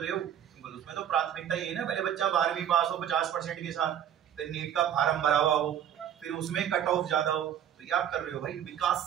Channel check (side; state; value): left; quieter; 10.0 dB